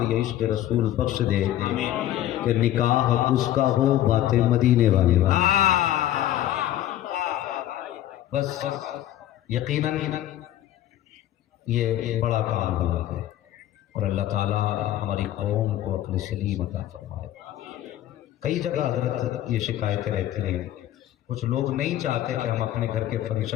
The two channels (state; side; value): quieter; right; 12.9 dB